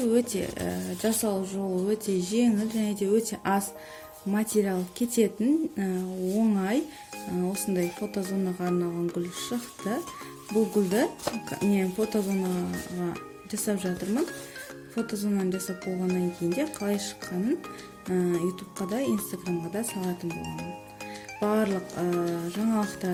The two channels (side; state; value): both; identical; correlation 1.00